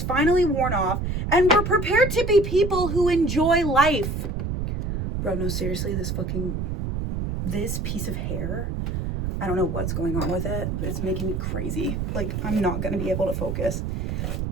finally worn off, and we're prepared to be people who enjoy life. Bro, no, seriously, this piece of hair, I don't know what's going on with it. It's making me crazy. Like, I'm not going to be able to focus.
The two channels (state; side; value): noise; right; rumble, 2 dB below the sound